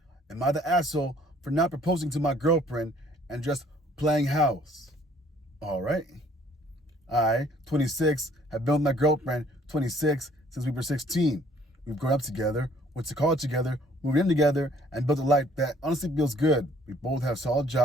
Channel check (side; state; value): both; normal; correlation 0.59